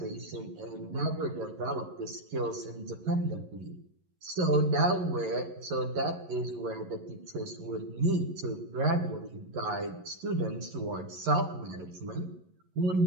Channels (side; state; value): left; late; 11 ms